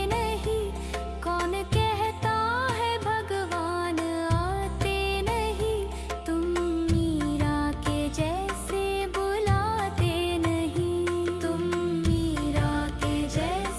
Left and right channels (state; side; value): identical; both; correlation 1.00